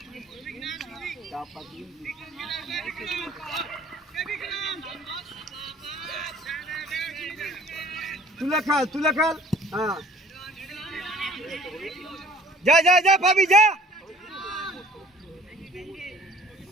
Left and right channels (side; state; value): both; normal; correlation 0.51